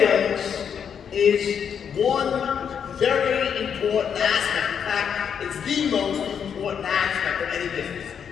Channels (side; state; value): right; quieter; 7.6 dB